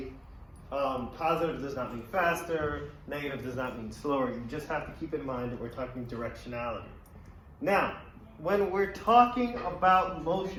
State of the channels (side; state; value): both; identical; correlation 1.00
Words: positive does not mean faster, negative does not mean slower. You just have to keep in mind that we're talking directionality. Now, when we're talking about